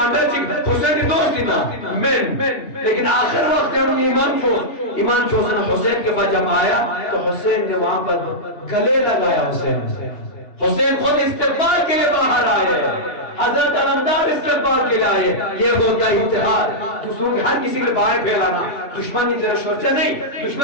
حسین کی دوستی نا من، لیکن آخر وقت ہم ایمان چوسن حسین کے بعد جب آیا تو حسین نے وہاں پر گلے لگایا، حسین خود استقبال کے لیے باہر آئے، حضرت علمدار استقبال کے لیے آئے۔ یہ ہوتا ہے اتحاد، دوسروں کے ہر کسی کے باہر پھیلانا، دشمنی تیرا شورچہ نہیں،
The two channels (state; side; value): late; right; 2.8 ms